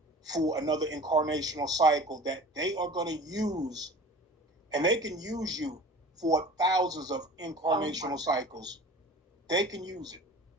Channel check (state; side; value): normal; both; correlation 0.41